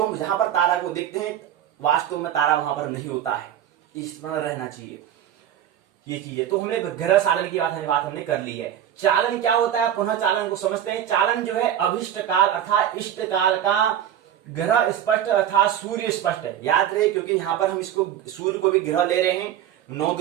हम जहां पर तारा को देखते हैं वास्तव में तारा वहां पर नहीं होता है, इस तरह रहना चाहिए ये चीजें। तो हमने ग्रह चालन की बात हमने कर ली है। चालन क्या होता है, पुनः चालन को समझते हैं। चालन जो है अभिष्ट काल अर्थात इष्ट काल का ग्रह स्पष्ट अर्थात सूर्य स्पष्ट है। याद रहे, क्योंकि यहाँ पर हम इसको सूर्य को भी ग्रह ले रहे हैं, 9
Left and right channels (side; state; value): left; quieter; 10.5 dB